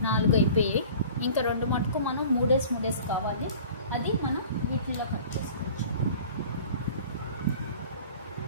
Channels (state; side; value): inverted; both; correlation -0.44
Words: అయిపోయాయి. ఇంకా 2 మటుకు మనం 3 కావాలి, అది మనం వీటిల్లో కట్ చేసుకోవచ్చు.